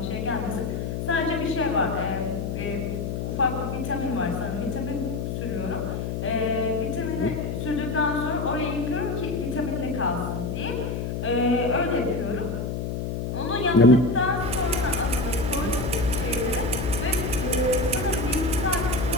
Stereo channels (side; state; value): left; noise; hum, 3 dB below the sound